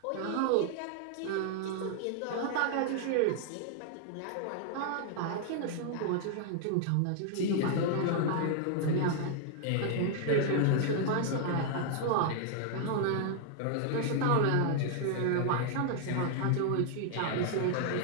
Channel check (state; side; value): different; both; correlation 0.00